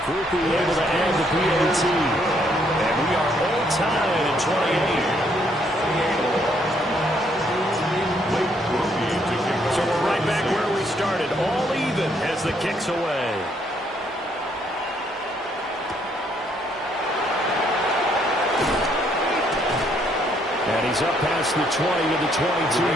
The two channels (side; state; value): both; normal; correlation 0.70